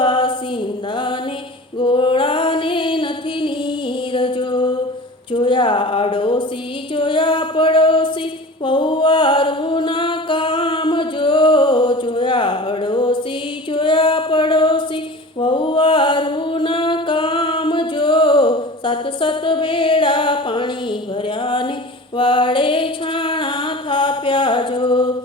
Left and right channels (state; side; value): normal; both; correlation 0.37